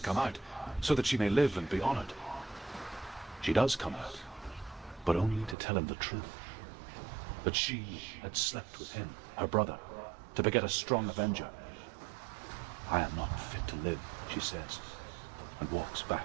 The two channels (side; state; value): left; drops out; at 5.6 s